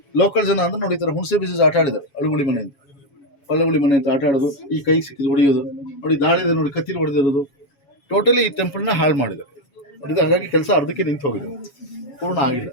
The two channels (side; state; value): right; late; 7.2 ms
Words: ಲೋಕಲ್ ಜನ ಅಂದ್ರೆ ನೋಡಿ, ಈ ಥರ ಹುಣಸೆ ಬೀಜ ಆಟ ಆಡಿದ್ದಾರೆ. ಅಳುಗುಳಿ ಮನೆ ಅಂತ, ಒಳ್ಳಗುಳಿ ಮನೆ ಅಂತ ಆಟ ಆಡೋದು, ಈ ಕೈ ಸಿಕ್ಕಿದ್ದು ಹೊಡೆಯೋದು ನೋಡಿ. ದಾಳಿದೆ ನೋಡಿ, ಕತ್ತಿಲಿ ಹೊಡೆದಿರೋದು. ಟೋಟಲಿ ಈ ಟೆಂಪಲ್ನ ಹಾಳು ಮಾಡಿದ್ದಾರೆ ನೋಡಿ. ಹಾಗಾಗಿ ಕೆಲಸ ಅರ್ಧಕ್ಕೆ ನಿಂತು ಹೋಗಿದೆ, ಪೂರ್ಣ ಆಗಿಲ್ಲ.